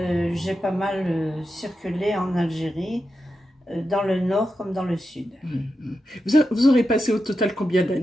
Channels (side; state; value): both; normal; correlation 0.89